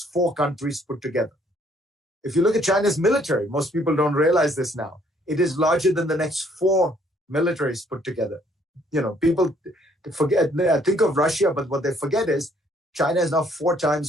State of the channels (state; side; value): normal; both; correlation 0.64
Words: 4 countries put together. If you look at China's military, most people don't realize this now. It is larger than the next 4 militaries put together. People think of Russia, but what they forget is China is now 4